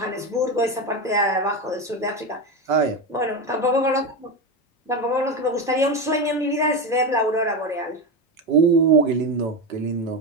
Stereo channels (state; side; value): normal; both; correlation 0.16